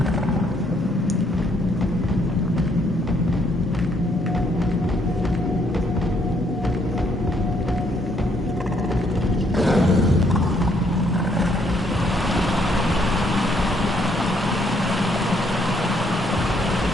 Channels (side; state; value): both; normal; correlation 0.70